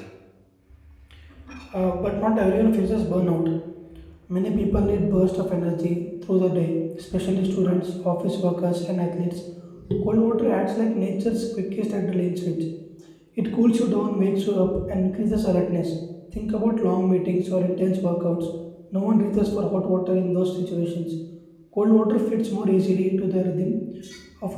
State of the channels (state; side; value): identical; both; correlation 1.00